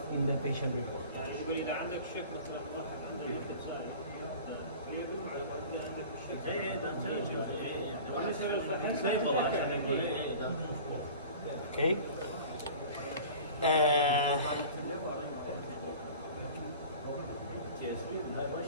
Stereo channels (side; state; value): both; inverted; correlation -0.41